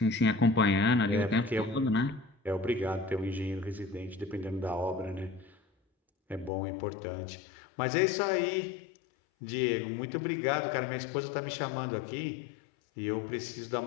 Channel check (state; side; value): drops out; right; at 6.5 s